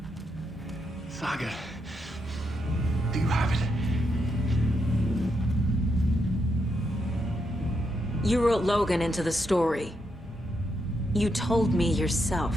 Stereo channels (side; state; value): both; normal; correlation 0.81